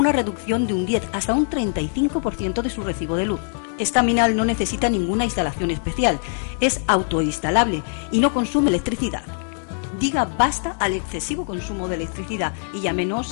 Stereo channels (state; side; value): silent; right; digital silence